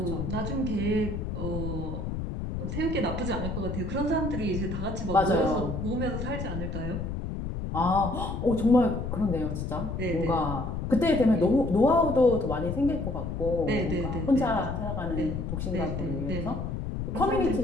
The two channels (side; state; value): left; noise; rumble, 4 dB below the sound